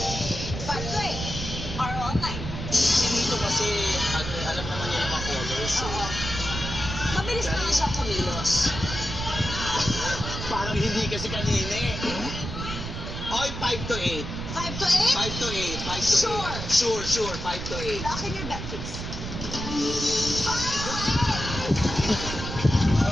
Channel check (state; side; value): noise; right; rumble, 6 dB below the sound